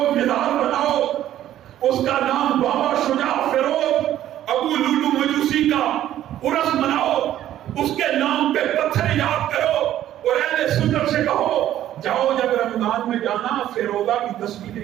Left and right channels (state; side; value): quieter; left; 12.3 dB